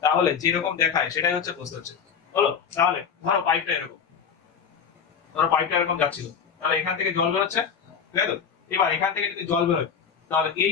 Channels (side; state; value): right; quieter; 6.9 dB